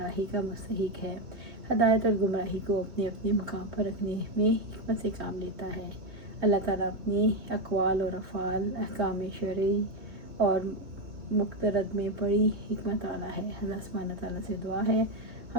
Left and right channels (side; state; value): left; late; 2.4 ms